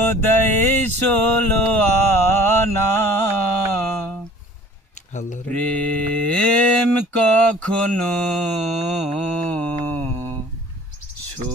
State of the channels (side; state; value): both; normal; correlation 0.49